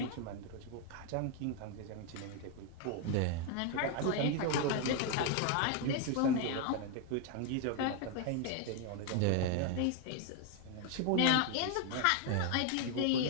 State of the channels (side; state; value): both; different; correlation 0.01